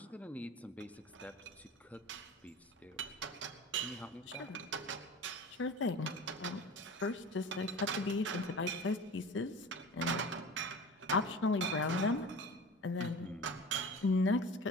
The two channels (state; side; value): normal; both; correlation 0.35